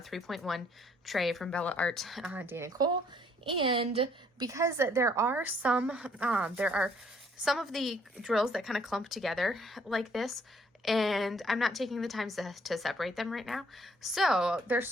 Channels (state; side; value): normal; both; correlation 0.64